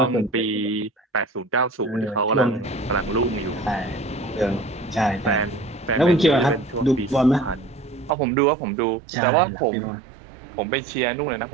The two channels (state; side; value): drops out; left; at 8.2 s